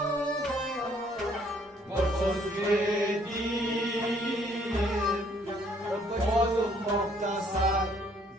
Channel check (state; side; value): normal; both; correlation 0.63